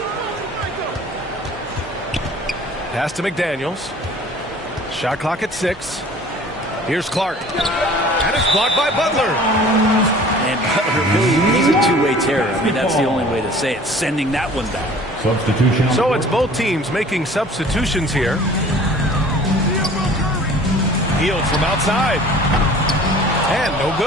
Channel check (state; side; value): normal; both; correlation 0.48